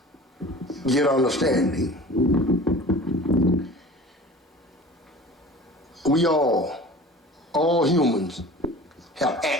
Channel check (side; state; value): both; normal; correlation 0.41